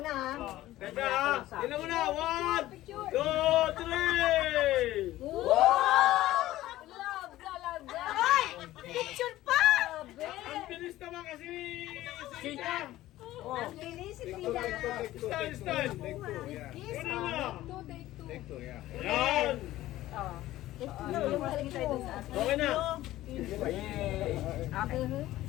na ha. Teka, tingnan mo na. 1, 2, 3. Love talaga. Ay! Picture pa! Ang bilis naman kasi ni Sita. Ang bilis, si Tita. Stand. Una na. Yan. Okay na.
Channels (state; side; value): quieter; right; 15.5 dB